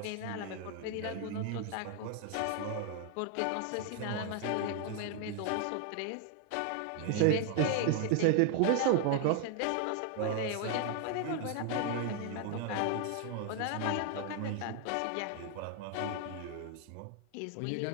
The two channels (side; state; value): both; different; correlation 0.00